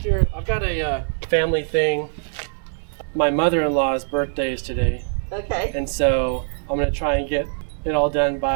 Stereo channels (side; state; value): left; silent; digital silence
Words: I've got a family thing. My mother-in-law's birthday is today, Okay. and so I'm going to try and get it all done